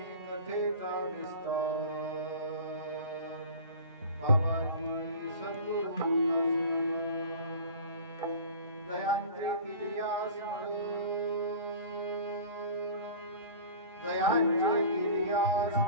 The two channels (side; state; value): both; inverted; correlation -0.39